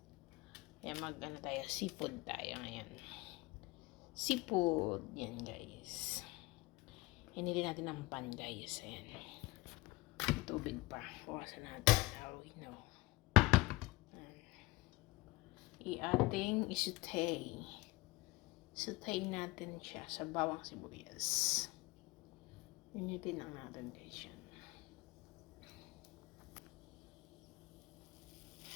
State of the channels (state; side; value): quieter; right; 21.5 dB